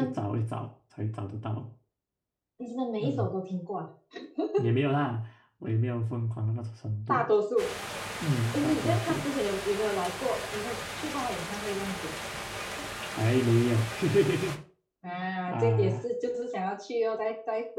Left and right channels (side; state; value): both; identical; correlation 1.00